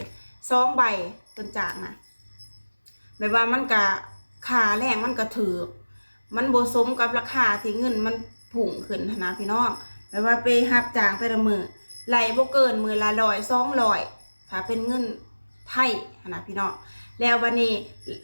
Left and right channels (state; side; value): inverted; both; correlation -1.00